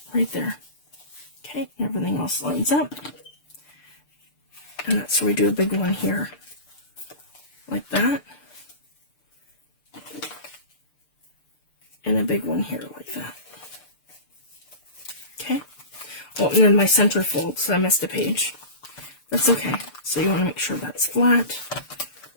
right there. Okay, everything else lines up. And that's where we do a big one here, like that. And a big one here, like that. Okay. Oh, and then my center fold, so I missed a page. That's okay. So you want to make sure that's flat,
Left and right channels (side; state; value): right; late; 6.7 ms